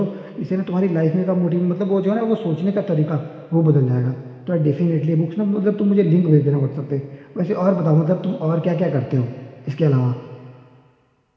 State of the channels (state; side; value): identical; both; correlation 1.00